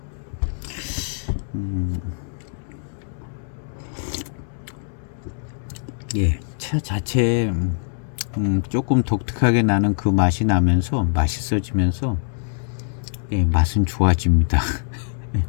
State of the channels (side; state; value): right; silent; digital silence